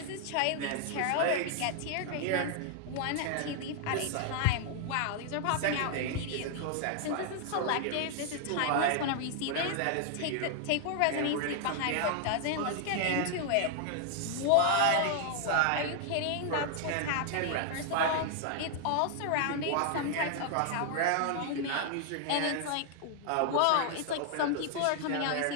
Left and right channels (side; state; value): both; different; correlation 0.00